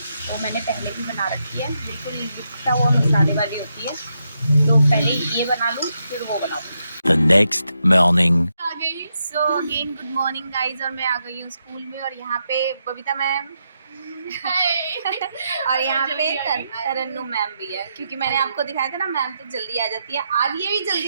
मैंने पहले भी बना रखी है, बिल्कुल लिखता हुआ मसाले वाली होती है, तो पहले ये बना लूँ फिर वो बनाऊँगी। The next morning. आ गई। So again good morning guys, और मैं आ गई हूँ स्कूल में, और यहाँ पे बबीता मैम और यहाँ पे तरन्नु मैम भी है, क्योंकि मैंने आपको दिखाया था ना मैम तो जल्दी आ जाती है, आज ये भी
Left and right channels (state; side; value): inverted; both; correlation -0.82